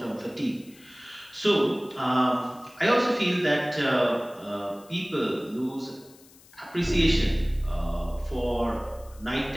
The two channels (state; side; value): noise; left; hiss, 25 dB below the sound